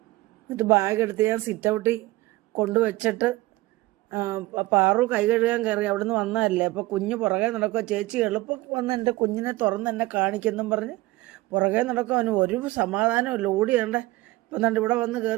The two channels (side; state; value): left; quieter; 19.1 dB